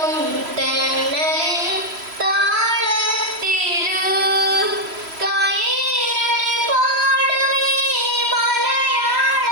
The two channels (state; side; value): late; left; 3.0 ms